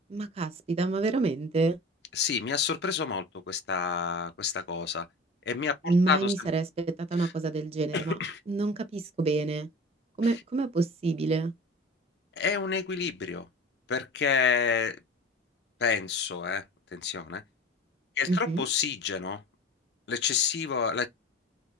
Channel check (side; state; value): both; normal; correlation 0.38